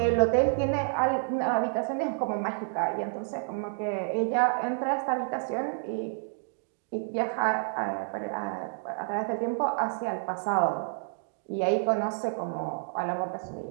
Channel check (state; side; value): silent; left; digital silence